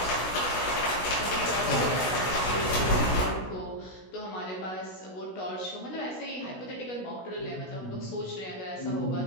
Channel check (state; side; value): late; right; 16 ms